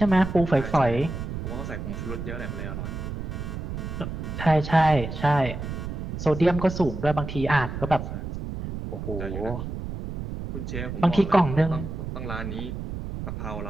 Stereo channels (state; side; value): noise; right; rumble, 6 dB below the sound